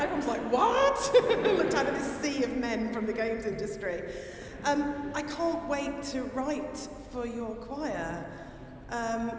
Everyone's like, what? Looked out at this sea of men from the games industry. I can't wait to write for your choir.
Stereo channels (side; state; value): both; identical; correlation 1.00